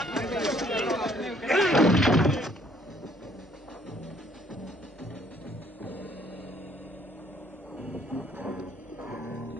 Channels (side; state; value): both; normal; correlation 0.63